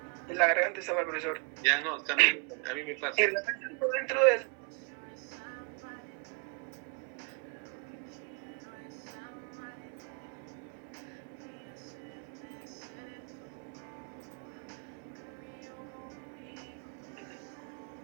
La garganta está mal, profesor. Ya no, también a mí me pasa. Y represento dentro del...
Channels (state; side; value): quieter; left; 33.8 dB